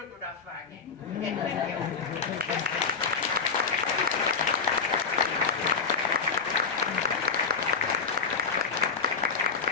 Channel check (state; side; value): quieter; right; 5.2 dB